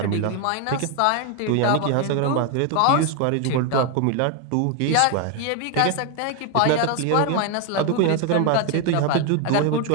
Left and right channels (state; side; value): different; both; correlation 0.01